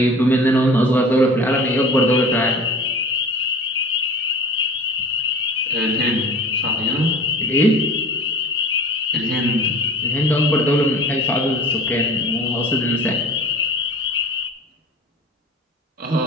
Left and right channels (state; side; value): normal; both; correlation 0.41